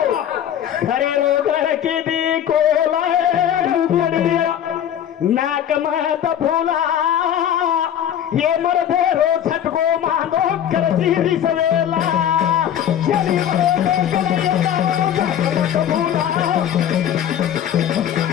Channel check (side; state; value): right; quieter; 10.0 dB